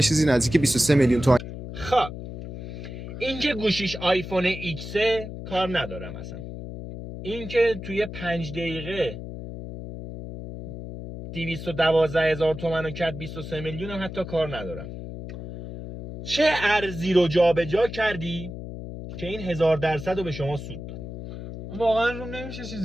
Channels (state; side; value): noise; left; hum, 9 dB below the sound